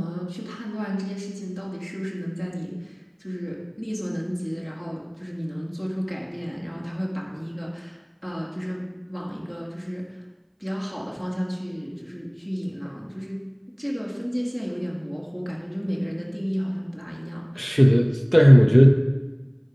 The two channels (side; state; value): both; identical; correlation 1.00